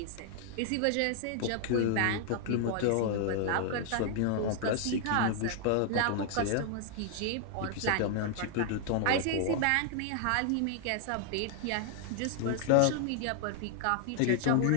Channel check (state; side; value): different; both; correlation 0.00